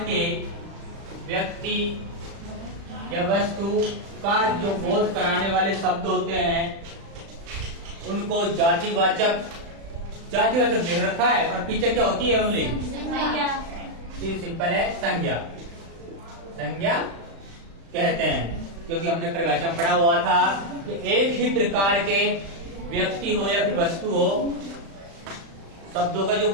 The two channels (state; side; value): late; left; 36 ms